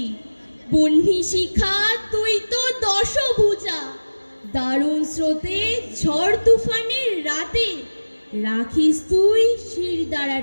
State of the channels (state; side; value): inverted; both; correlation -1.00